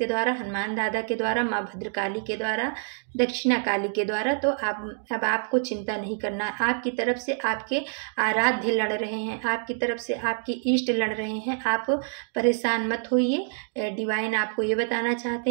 द्वारा, हनुमान दादा के द्वारा, माँ भद्रकाली के द्वारा, दक्षिणा काली के द्वारा। तो अब आपको चिंता नहीं करना, आपकी तरफ से आपके आराध्य लड़ रहे हैं, आपकी तरफ से आपके इष्ट लड़ रहे हैं। आप परेशान मत होइए, डिवाइन आपको ये बताना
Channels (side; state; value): left; silent; 60 dB below the other